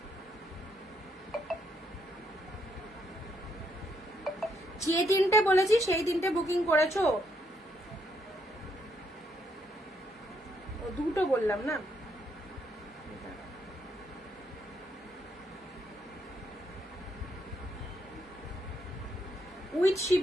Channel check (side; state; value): both; normal; correlation 0.74